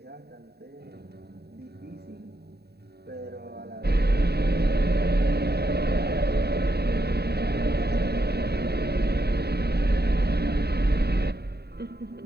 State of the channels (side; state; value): left; late; 0.47 ms